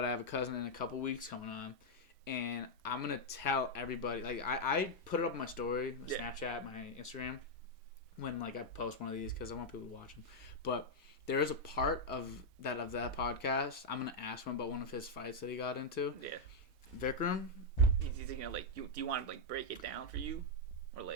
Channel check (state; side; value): normal; both; correlation -0.02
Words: I have a cousin in a couple weeks coming on. And I'm going to tell everybody, like I put it up on my story, my Snapchat, my Instagram. When like I post one of these because I want people to watch them, but there is a part of that podcast. I'm gonna ask him about one of his fights that he got into. Yeah, Vikram. He's gonna like. Do you want to like break it down for you, or